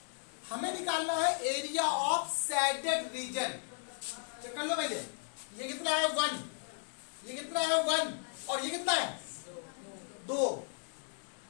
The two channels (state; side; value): silent; right; 54 dB below the other